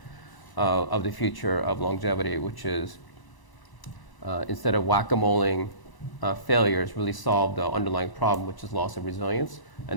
of the future of longevity, which is instead of whack-a-moling failures, really solve the underlying problem, which is loss of resilience.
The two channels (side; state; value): right; late; 1.0 ms